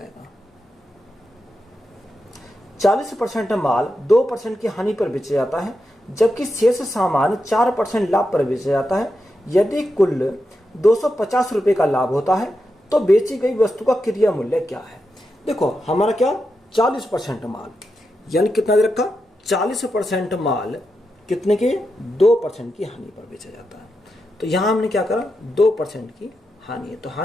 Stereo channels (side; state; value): both; normal; correlation 0.87